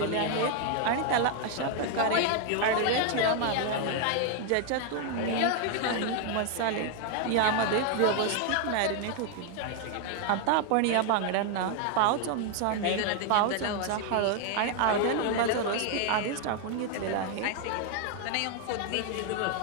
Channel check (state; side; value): different; both; correlation 0.00